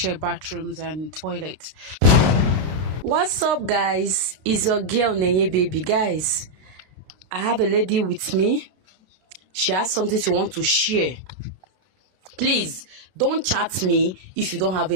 bathrooms and toilets. What's up, guys? It's your girl Nenye Baby. Guys, I have a lady with me. She has something she wants to share. Please don't chat me if you don't have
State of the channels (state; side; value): late; left; 32 ms